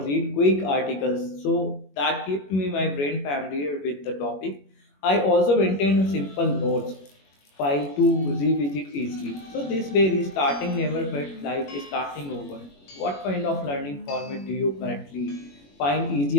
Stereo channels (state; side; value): late; right; 21 ms